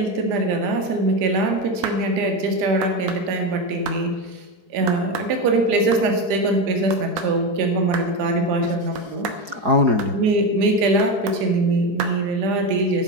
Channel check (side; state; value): left; late; 5.0 ms